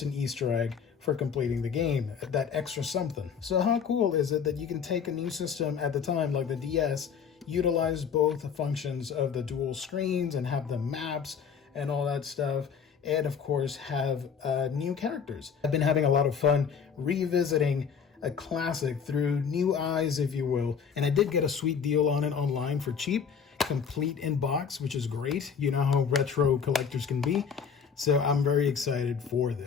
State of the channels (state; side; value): quieter; right; 6.8 dB